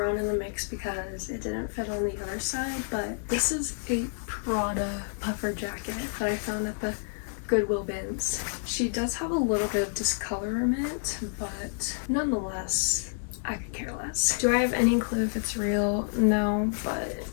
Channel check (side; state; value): right; silent; digital silence